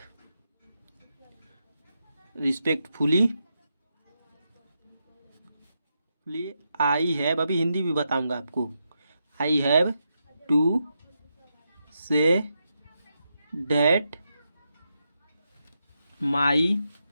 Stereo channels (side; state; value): both; inverted; correlation -0.85